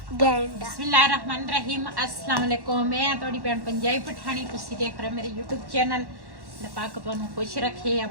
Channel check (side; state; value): left; late; 1.1 ms